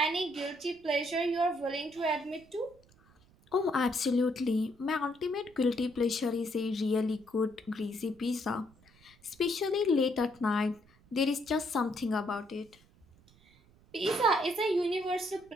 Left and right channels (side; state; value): right; noise; rumble, 28 dB below the sound